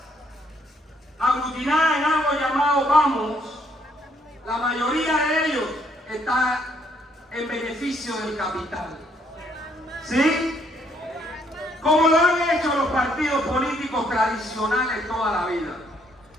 aglutinadas en algo llamado Vamos, la mayoría de ellos está en beneficio del capital. ¿Sí? Como lo han hecho los partidos políticos tradicionales toda la vida.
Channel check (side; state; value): both; normal; correlation 0.69